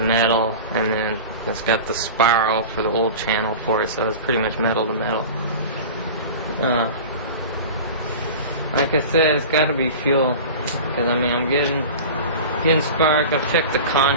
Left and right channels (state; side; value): inverted; both; correlation -0.34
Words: and then it's got the spiral for the oil channel for it, so it's pretty much metal to metal. Like I said, it's got to be fuel, because I mean I'm getting spark. I've checked the